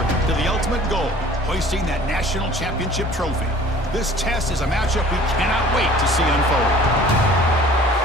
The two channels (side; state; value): both; normal; correlation 0.49